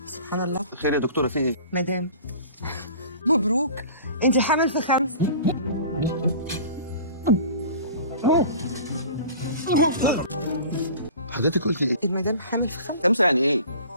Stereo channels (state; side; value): inverted; both; correlation -0.42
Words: سبحان الله. خير يا دكتوره، في ايه؟ مدام مبروك، انت حامل في 5. حضرتك قلت ايه؟ المدام حامل في 5. 5 يعني ايه؟